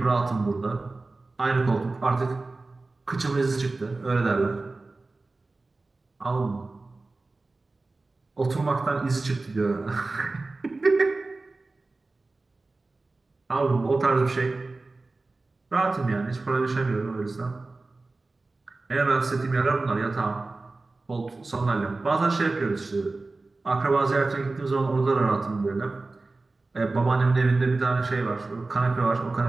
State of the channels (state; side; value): quieter; left; 3.4 dB